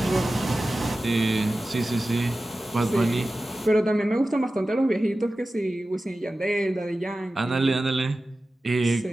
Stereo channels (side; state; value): both; normal; correlation 0.95